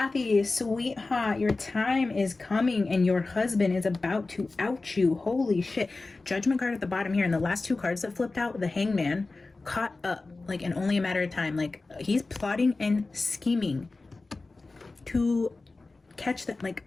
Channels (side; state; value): right; quieter; 3.5 dB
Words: sweetheart, your time is coming and your husband is about to out you. Holy shit. Judgment card at the bottom here, and the last two cards that flipped out, the Hangman, caught up, like in only a matter of time. Like, he's plotting and scheming to catch that. Like,